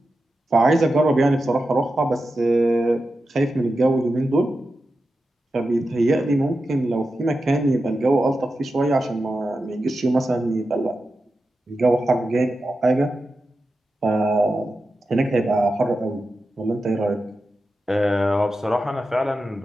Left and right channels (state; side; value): normal; both; correlation 0.91